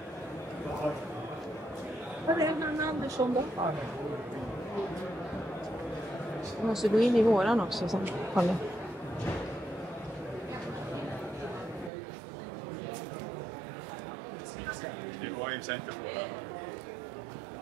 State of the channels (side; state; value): left; drops out; at 11.9 s